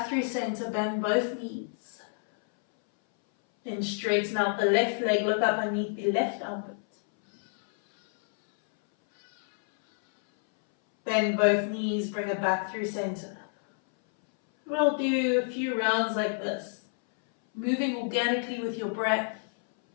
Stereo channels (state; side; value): silent; right; 59 dB below the other